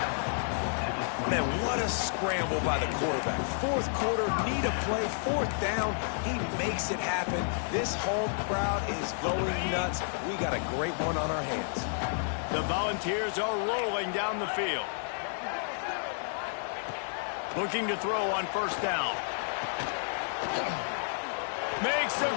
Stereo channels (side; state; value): right; silent; digital silence